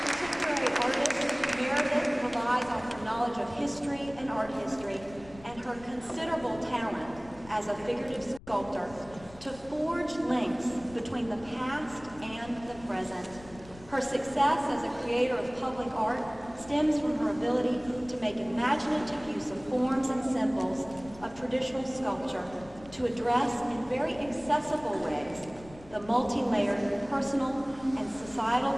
history and art history, and her considerable talent as a figurative sculptor to forge links between the past and the present. Her success as a creator of public art stems from her ability to make imaginative use of forms and symbols of traditional sculpture to address in very accessible ways the multi-layered personal and societal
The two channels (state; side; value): noise; left; rumble, 20 dB below the sound